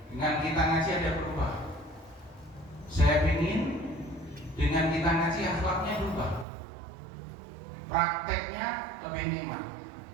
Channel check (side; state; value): left; drops out; at 6.5 s